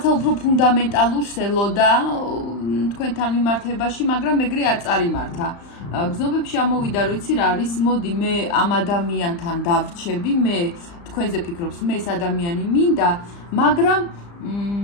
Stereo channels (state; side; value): late; right; 35 ms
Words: უფრო ფუნდამენტალურს ელოდა თქვენთან მიმართებაში, მაგრამ ეგრე არ წარიმართა. გრძნობებში ამოვიდა, რომ იცი რა არის, მოდი მე ამ ადამიანთან დავრჩები, მე თქვენზე ფიქრობს, მე ეს ადამიანი მინდა, მაგრამ